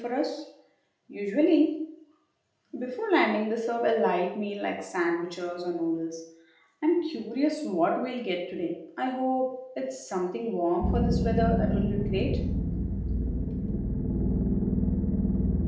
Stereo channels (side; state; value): both; identical; correlation 1.00